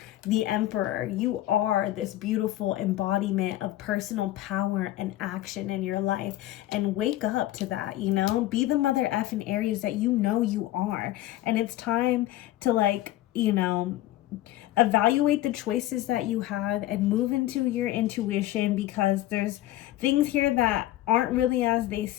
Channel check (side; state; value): right; quieter; 14.8 dB